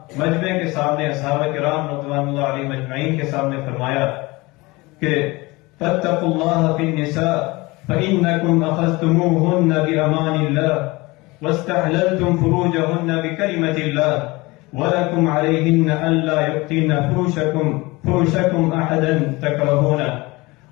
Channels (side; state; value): right; quieter; 22.9 dB